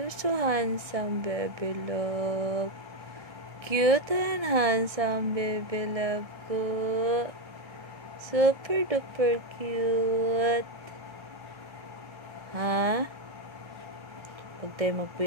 You're so handsome, baby love. Cute and handsome, baby love ko. Super duper cute. Ha? Huwag tayo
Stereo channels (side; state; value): left; late; 1.6 ms